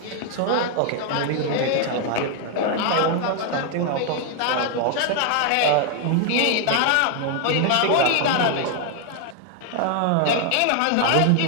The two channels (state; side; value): different; both; correlation 0.00